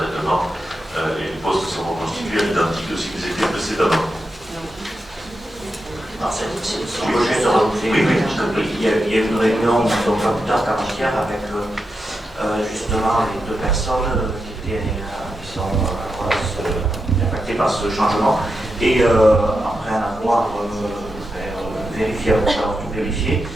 et les postes sont reconstitués à l'identique de ce qu'ils étaient précédemment. Si je peux juste rajouter, il y a eu une réunion, donc pas plus tard qu'avant-hier, avec justement les deux personnes qui sont impactées par ce changement. Et après un avoir vérifié, avoir tout vérifié,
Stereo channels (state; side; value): normal; both; correlation 0.87